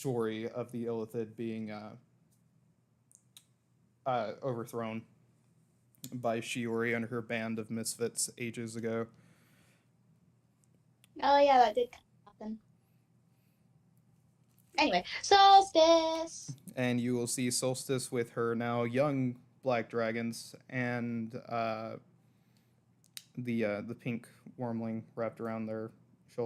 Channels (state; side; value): identical; both; correlation 1.00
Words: of the Illithid being overthrown by Shiori and her band of misfits ages ago. Oh yeah, that did happen. Anyway, solstice. And you will see Solstice with her now young black dragons and the pink wormling wrapped around their